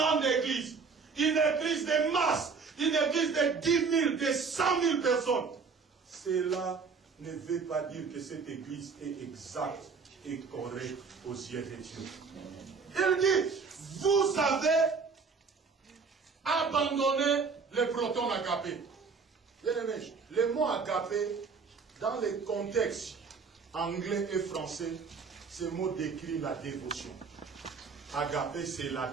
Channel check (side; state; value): left; quieter; 5.1 dB